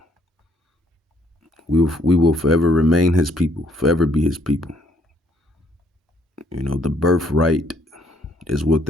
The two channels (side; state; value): both; normal; correlation 0.67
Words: We will forever remain his people, forever be his people. The birthright is